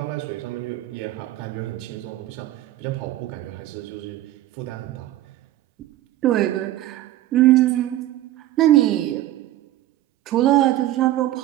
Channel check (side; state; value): left; quieter; 14.6 dB